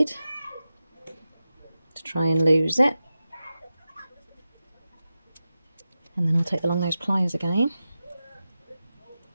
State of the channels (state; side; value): inverted; both; correlation -0.93